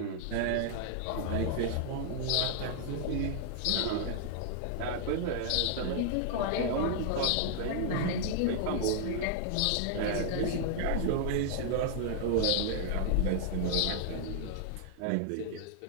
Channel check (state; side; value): different; both; correlation -0.01